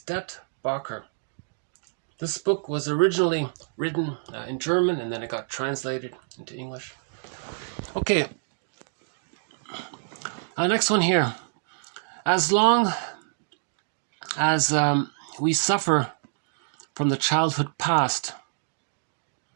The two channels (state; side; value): silent; left; digital silence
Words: This book was originally written in German, and then it got translated into English. Okay. Next one here. As long as we suffer from the childhood past,